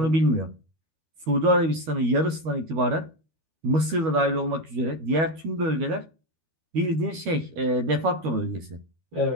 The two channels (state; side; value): late; left; 13 ms